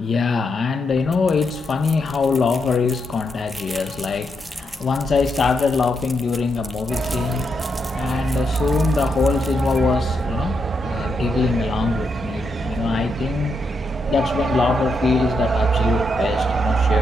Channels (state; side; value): normal; both; correlation 0.81